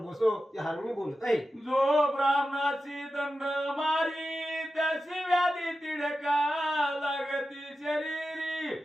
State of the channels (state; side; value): normal; both; correlation 0.92